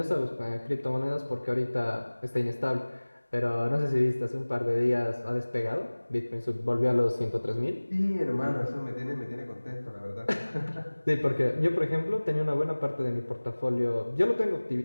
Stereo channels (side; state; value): both; inverted; correlation -1.00